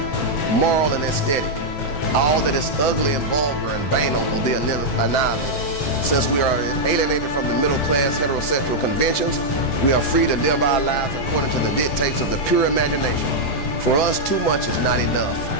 moral and aesthetic. All that is ugly and vulgar and banal will be annihilated. Since we are alienated from the middle class heterosexual conventions, we are free to live our lives according to the dictates of the pure imagination. For us, too much is not enough.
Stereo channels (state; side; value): late; right; 7.1 ms